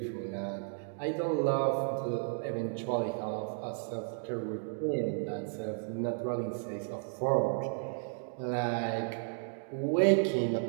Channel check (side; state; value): left; silent; digital silence